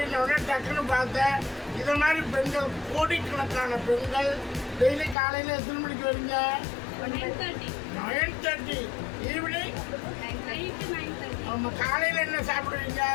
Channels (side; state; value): right; drops out; at 5.2 s